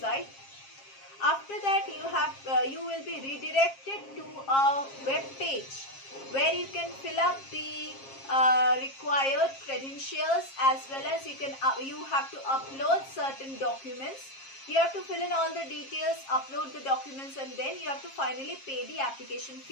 After that, you will be redirected to a web page where you can fill up the required credentials, as well as you have to upload certain documents. You have to fill in all the details, upload the documents, and then you have to finally pay the application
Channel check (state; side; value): late; right; 7.4 ms